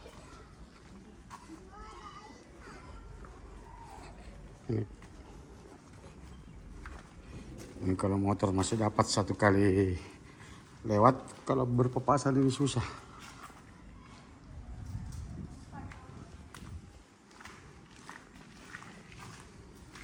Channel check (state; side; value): identical; both; correlation 1.00